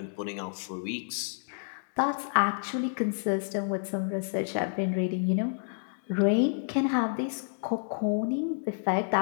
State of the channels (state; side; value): silent; right; digital silence